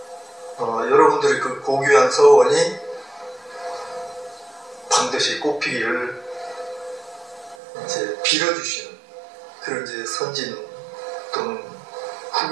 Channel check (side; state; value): left; drops out; at 7.6 s